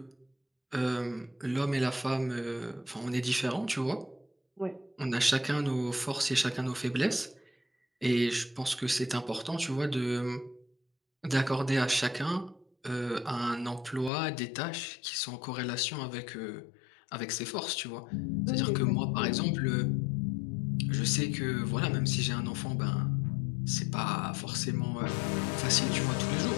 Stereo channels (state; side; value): drops out; right; at 14.1 s